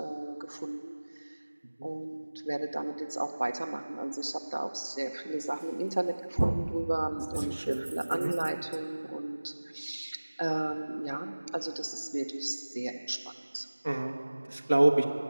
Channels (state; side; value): inverted; both; correlation -1.00